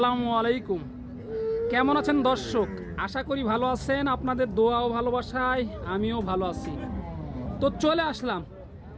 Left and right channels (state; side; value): identical; both; correlation 1.00